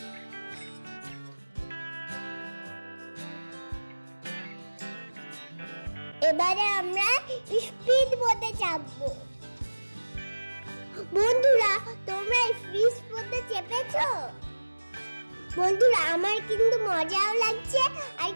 এবারে আমরা স্পিড বোটে চাপবো। বন্ধুরা, তোমরা স্পিড বোটে চেপেছো? বন্ধুরা, আমার কিন্তু মজাও লাগছে আর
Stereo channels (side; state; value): both; inverted; correlation -1.00